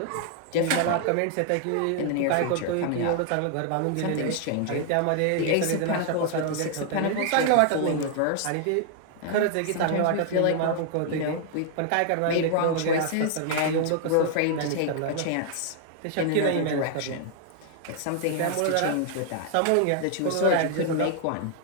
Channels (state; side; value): different; both; correlation 0.00